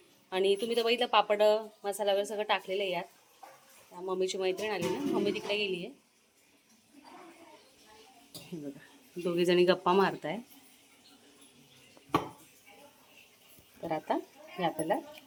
आणि तुम्ही तर बघितलं पापड मसाला वगैरे सगळं टाकलेलं आहे यात. मम्मीची मैत्रीण आली ना, मम्मी तिकडे गेली आहे. बघा, दोघी जणी गप्पा मारताय. तर आता हे आपल्याला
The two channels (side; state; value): both; identical; correlation 1.00